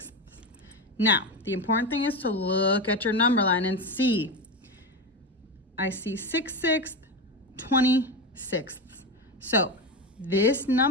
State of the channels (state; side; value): normal; both; correlation 0.18